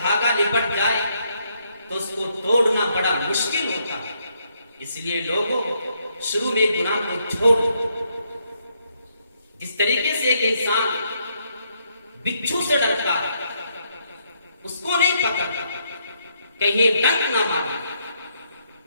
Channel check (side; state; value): both; inverted; correlation -0.74